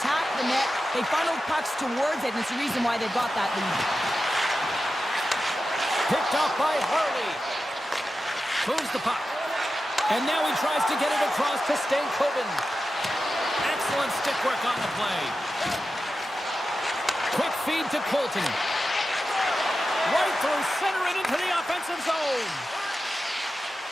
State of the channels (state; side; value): normal; both; correlation 0.92